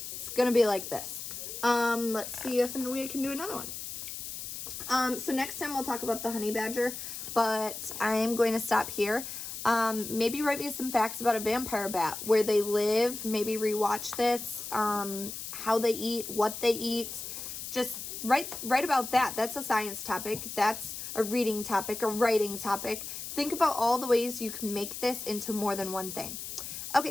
It's going to be like this. Let's see if we can do another one. So next time we'll talk about the honey badger, but I'm going to stop here. Maybe write me some facts about a vampire bat, where they live, maybe rewatch this, how they eat, what they eat. Just write about that. That's a science topic. That's a reading topic, a writing topic. Think about all the ways you can make this into more than one thing.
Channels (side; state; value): left; noise; hiss, 8 dB below the sound